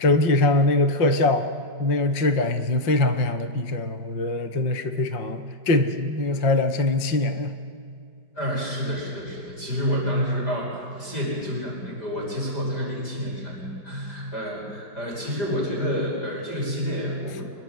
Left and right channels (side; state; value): right; late; 5.6 ms